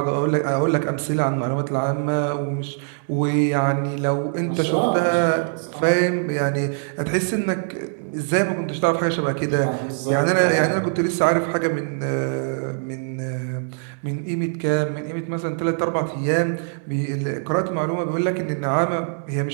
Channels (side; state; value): left; silent; 64 dB below the other